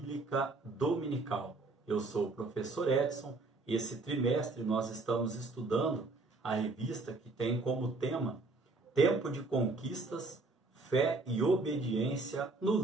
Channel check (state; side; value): quieter; left; 3.4 dB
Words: Dominical. Eu sou o professor Edson e esse trimestre nós estamos estudando a revista que tem como tema Tempo de Conquistas, Fé e Obediência no